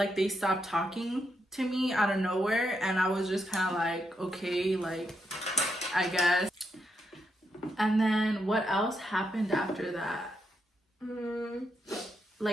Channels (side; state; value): both; normal; correlation 0.81